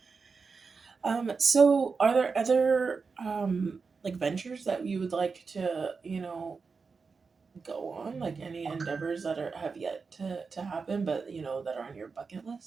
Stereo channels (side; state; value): left; quieter; 4.9 dB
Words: So are there other like ventures that you would like to, go on? Like any endeavors that have yet to happen, but that are on your bucket